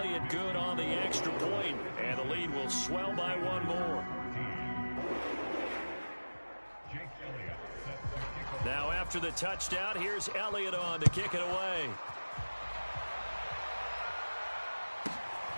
good on the extra point, and the lead will swell by 1 more. Now after the touchdown, here's Elliott on to kick it away.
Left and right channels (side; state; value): both; inverted; correlation -1.00